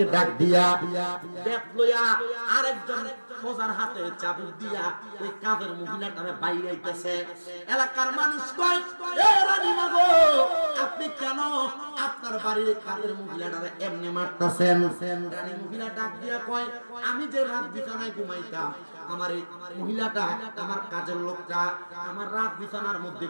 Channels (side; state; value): both; inverted; correlation -1.00